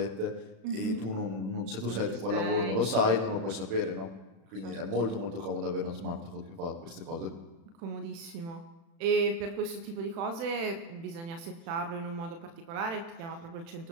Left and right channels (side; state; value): left; late; 36 ms